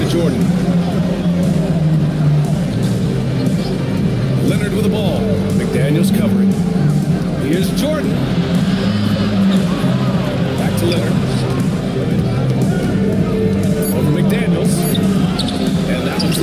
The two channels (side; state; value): both; identical; correlation 1.00